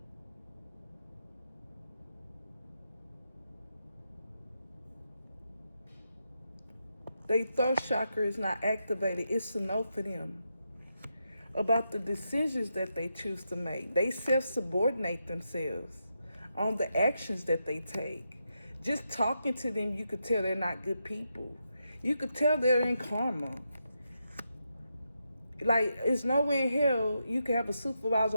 their third chakra is not activated. It's a no for them. About the decisions that they choose to make. They self-subordinate themselves on the actions that they take. Just talking to them, you could tell they're not good people. You could tell they're in karma. Like, it's nowhere in hell you can have a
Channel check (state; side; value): inverted; both; correlation -0.84